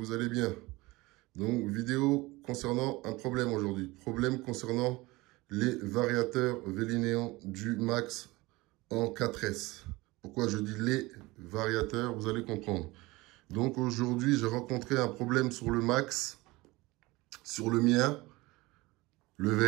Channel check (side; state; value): left; quieter; 21.6 dB